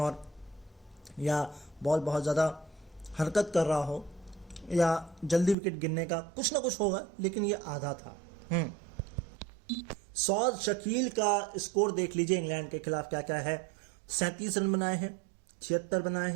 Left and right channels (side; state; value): left; drops out; at 5.6 s